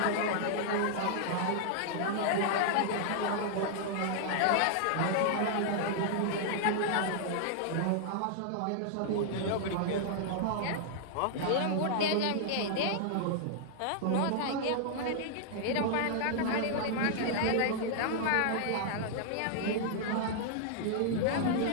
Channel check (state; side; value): different; both; correlation -0.01